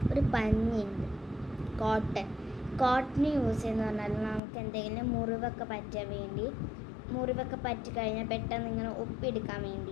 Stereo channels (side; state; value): right; drops out; at 4.4 s